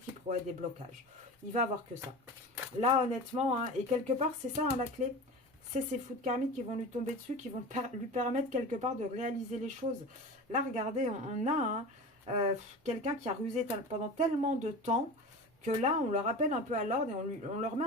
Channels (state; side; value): normal; both; correlation 0.32